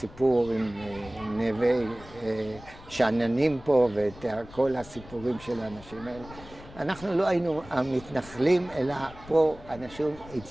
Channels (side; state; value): left; noise; rumble, 18 dB below the sound